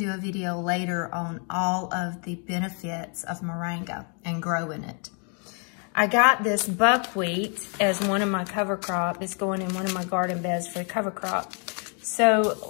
a video later on all of the benefits of moringa and growing it. I got this buckwheat as one of my cover crop. It's going in one of my garden beds for the cover crop. So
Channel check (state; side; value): quieter; right; 39.8 dB